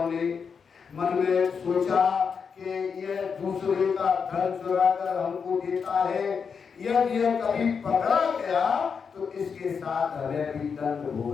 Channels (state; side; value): quieter; right; 6.1 dB